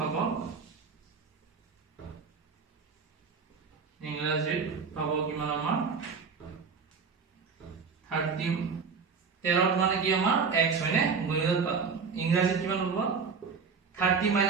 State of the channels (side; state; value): left; quieter; 5.4 dB